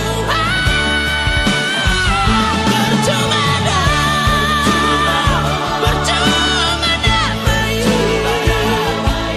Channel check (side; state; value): both; identical; correlation 1.00